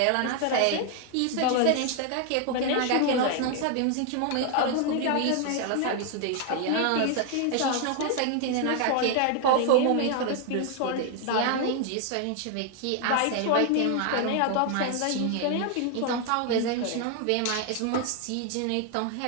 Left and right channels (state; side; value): different; both; correlation 0.00